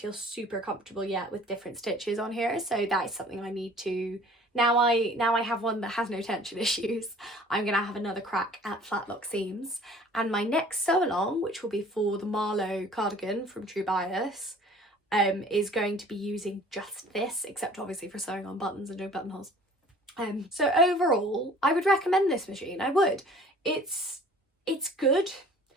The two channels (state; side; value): normal; both; correlation 0.50